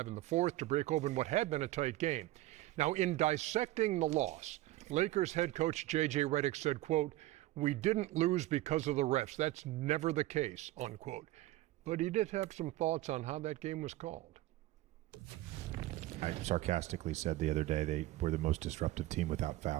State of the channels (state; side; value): quieter; left; 16.9 dB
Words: in the fourth to break open what had been a tight game. Now, in dissecting the loss, Lakers head coach J.J. Redick said, quote, "We didn't lose because of the refs. That's never the case," unquote. But he did have some thoughts on how that game was called. I sarcastically said the other day they were the most disruptive team without